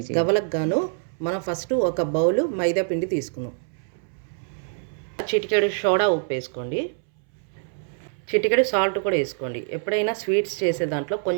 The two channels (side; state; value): left; silent; 62 dB below the other